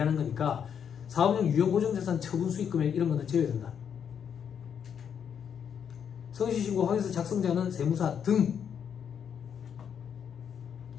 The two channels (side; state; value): right; quieter; 7.9 dB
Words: 거니까 사업용 유형고정자산 처분 수익금액 이런 거는 제외된다. 성실신고 확인서 작성자는 세무사 등